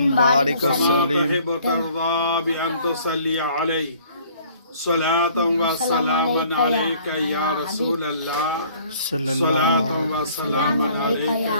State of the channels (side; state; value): both; inverted; correlation -0.56